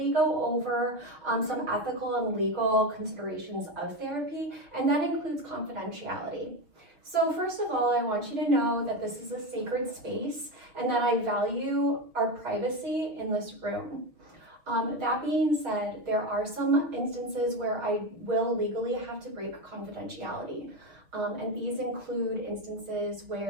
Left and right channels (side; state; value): left; late; 6.2 ms